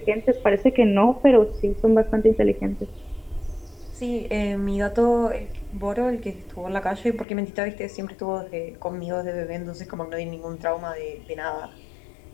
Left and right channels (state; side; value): drops out; right; at 7.2 s